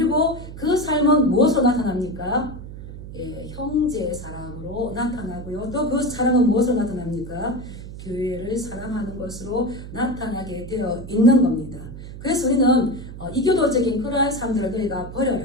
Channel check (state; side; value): noise; right; hum, 12 dB below the sound